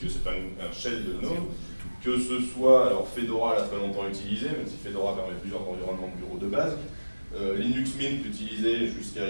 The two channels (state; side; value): inverted; both; correlation -1.00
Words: c'est un shell de GNOME, que ce soit, alors Fedora l'a très longtemps utilisé, même si Fedora permet plusieurs environnements de bureau de base, Linux Mint utilisé jusqu'à